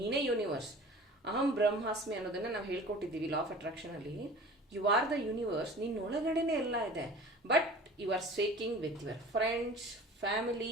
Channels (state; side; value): normal; both; correlation 0.42